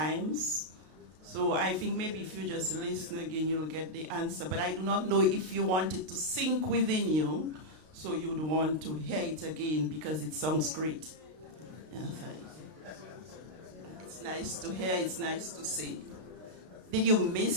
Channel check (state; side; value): late; left; 32 ms